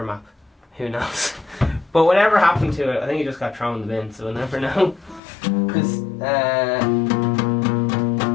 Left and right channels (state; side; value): drops out; right; at 5.2 s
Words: map. Who knows? But whatever happened to it, I think it just got thrown in the bin, so we'll never know. Because